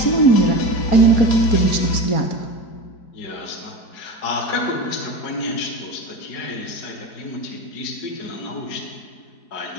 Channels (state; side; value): late; right; 4.7 ms